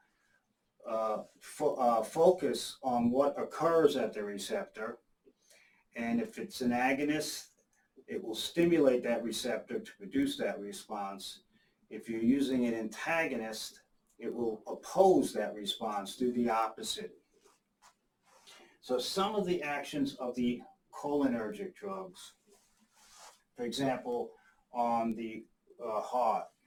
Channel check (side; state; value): both; identical; correlation 1.00